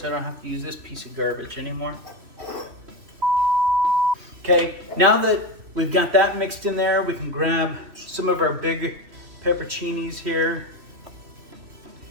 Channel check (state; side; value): late; left; 3.1 ms